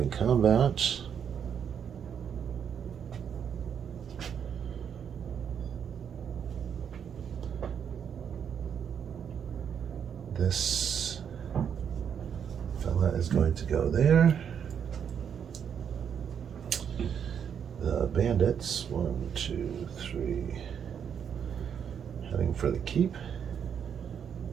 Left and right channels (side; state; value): left; quieter; 7.9 dB